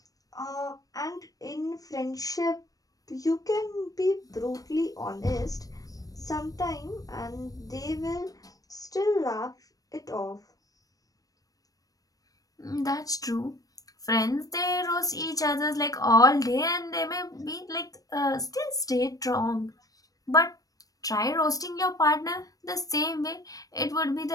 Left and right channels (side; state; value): right; late; 0.18 ms